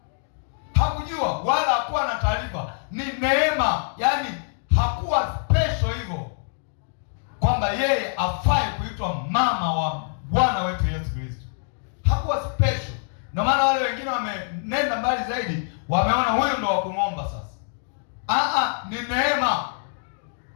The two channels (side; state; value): right; silent; digital silence